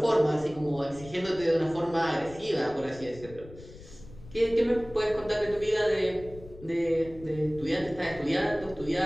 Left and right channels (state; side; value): noise; left; rumble, 18 dB below the sound